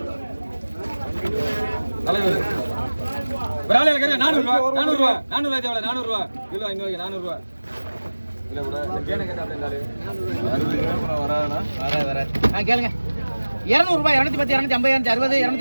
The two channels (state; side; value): inverted; both; correlation -1.00